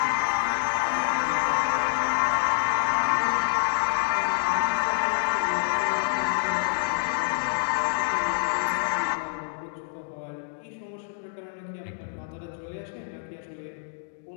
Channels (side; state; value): right; silent; digital silence